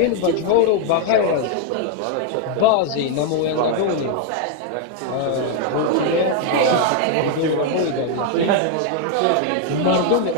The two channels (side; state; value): both; different; correlation 0.00